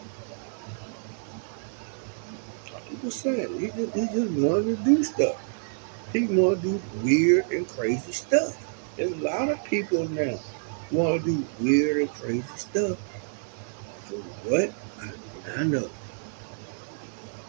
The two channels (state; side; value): silent; left; 59 dB below the other